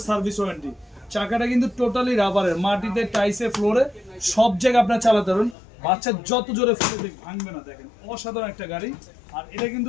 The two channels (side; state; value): right; drops out; at 5.6 s